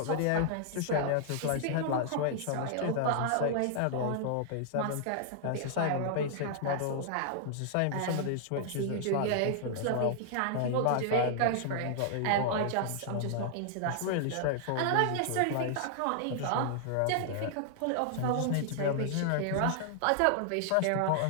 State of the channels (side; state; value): both; different; correlation -0.01